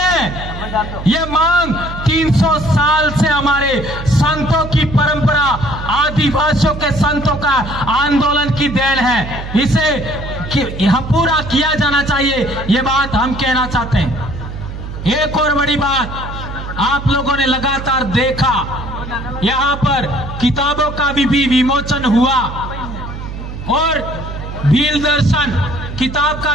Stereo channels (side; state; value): right; noise; hum, 9 dB below the sound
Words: ये मांग 300 साल से हमारे संतों की परंपरा, आदिवासियों के संतों का आंदोलन की देन है। इसे यहां पूरा किया जाना चाहिए, ये बात हम कहना चाहते हैं। एक और बड़ी बात आप लोगों ने लगातार देखा, यहां पर किताबों का भी विमोचन हुआ और भील दर्शन किताब का